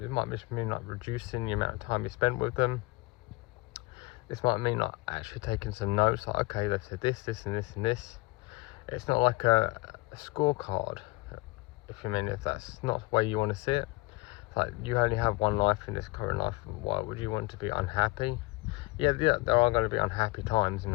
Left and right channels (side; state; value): right; quieter; 23.0 dB